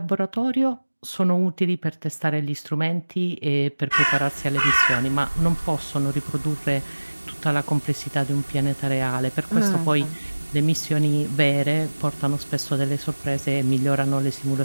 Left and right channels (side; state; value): both; inverted; correlation -1.00